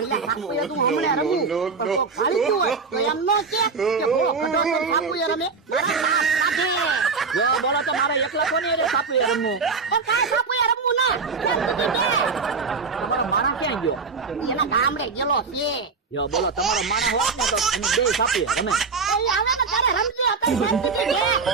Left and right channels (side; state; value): left; quieter; 4.8 dB